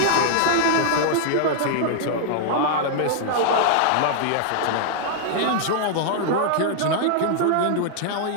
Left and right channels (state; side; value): different; both; correlation -0.01